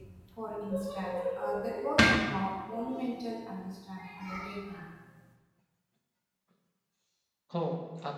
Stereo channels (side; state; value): both; identical; correlation 1.00